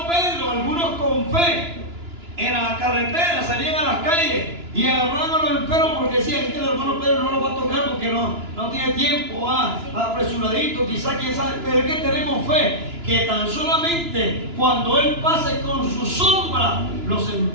Pedro, algunos con fe en la carretera salían a las calles y agarraban a los enfermos porque decían que el hermano Pedro no lo va a tocar porque no tiene tiempo, apresuradito, quizás, quién sabe, pero es que tenemos fe que tan solamente cuando Él pase con su sombra, los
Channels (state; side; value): late; left; 2.9 ms